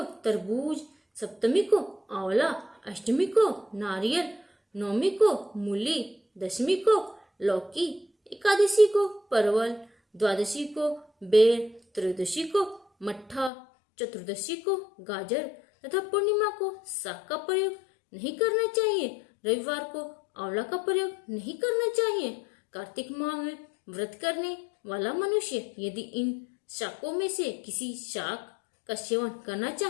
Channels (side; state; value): right; drops out; at 13.5 s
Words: तरबूज, सप्तमी को आंवला, अष्टमी को नारियल, नवमी को मूली, दशमी को लौकी, एकादशी को परवल, द्वादशी को बेर, त्रयोदशी को मट्ठा, चतुर्दशी को गाजर तथा पूर्णिमा को साग का प्रयोग नहीं करना चाहिए। रविवार को आंवला का प्रयोग नहीं करना चाहिए। कार्तिक माह में व्रत करने वाला मनुष्य यदि इन शाकों में से किसी शाक का सेवन करना